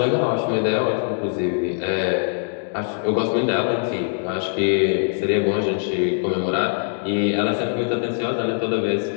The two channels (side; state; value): right; silent; digital silence